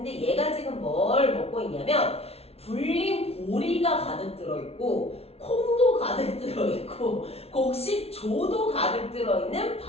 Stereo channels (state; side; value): late; right; 0.30 ms